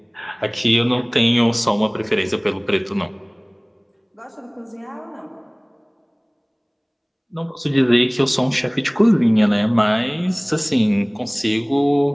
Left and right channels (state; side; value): identical; both; correlation 1.00